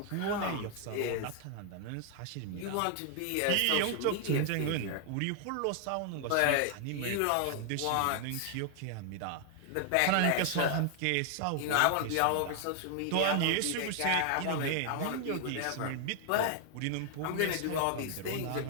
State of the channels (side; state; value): both; different; correlation 0.00